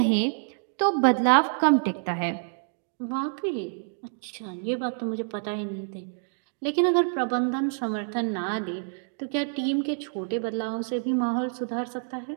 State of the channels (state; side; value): silent; left; digital silence